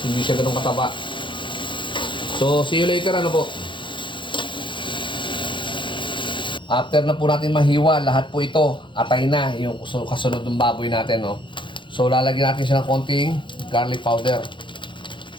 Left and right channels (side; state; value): right; late; 0.23 ms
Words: Hindi siya ganun kataba. So, see you later, ano po? After na po natin mahiwa, lahat po ito, atay na yung kasunod ng baboy natin, no? So, lalagyan natin siya ng konting garlic powder.